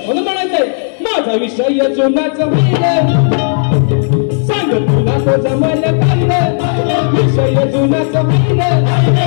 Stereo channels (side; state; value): right; silent; 67 dB below the other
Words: म्हणून म्हणायचंय माझा विषय जुनाच सांग तुला तो जमल काय विषय जुनाच